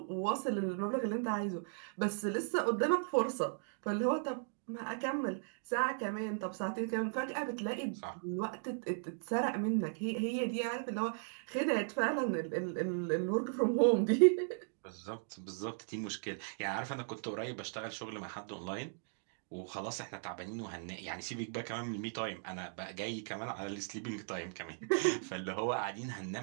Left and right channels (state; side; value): silent; left; digital silence